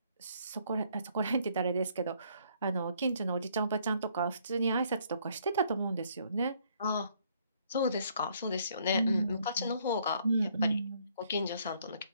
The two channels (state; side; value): inverted; both; correlation -0.66